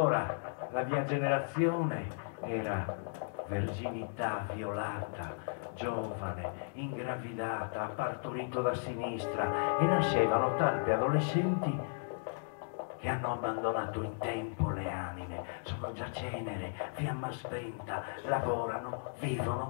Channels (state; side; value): silent; right; digital silence